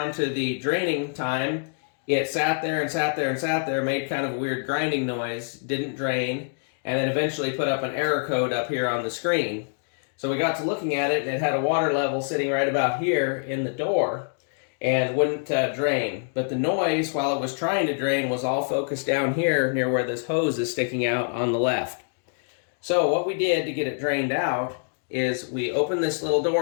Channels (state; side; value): silent; right; digital silence